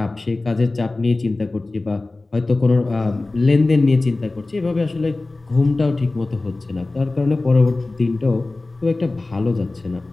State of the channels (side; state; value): right; quieter; 3.2 dB